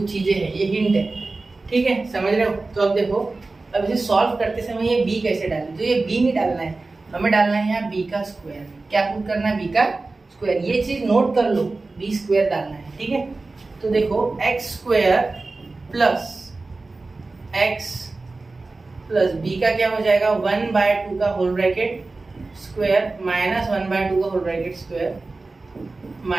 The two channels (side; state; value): left; quieter; 3.5 dB